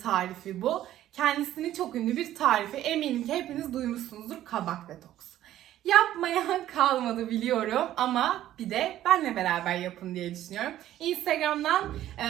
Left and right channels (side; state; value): left; quieter; 13.0 dB